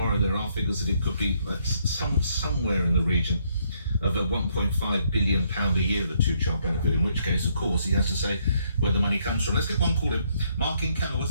There are figures that it could be somewhere in the region of a £1.5 billion a year, the two-child benefit, in which case, of course, he has to say where the money comes from. Let's get one call in. Mark in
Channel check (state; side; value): inverted; both; correlation -0.71